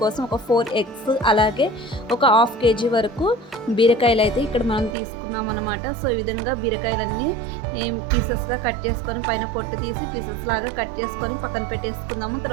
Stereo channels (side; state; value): left; drops out; at 5.0 s